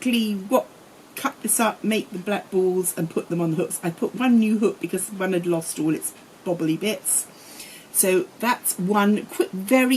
cut this up, make the black balls and put them on the hooks. I put one new hook because one had lost all its bobbly bits. So that's one quick,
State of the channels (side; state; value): both; identical; correlation 1.00